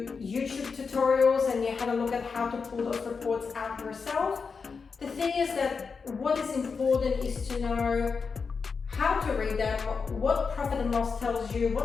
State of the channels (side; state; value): right; quieter; 5.2 dB